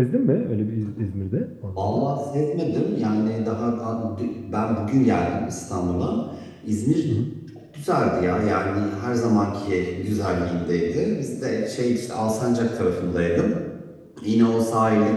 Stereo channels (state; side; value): identical; both; correlation 1.00